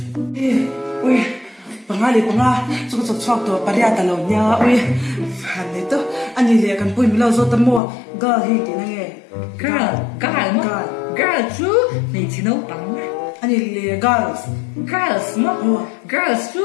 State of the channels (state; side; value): drops out; right; at 7.8 s